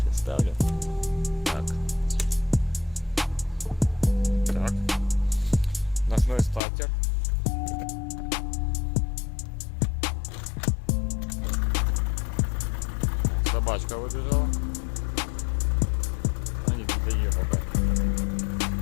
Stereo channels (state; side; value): drops out; right; at 6.6 s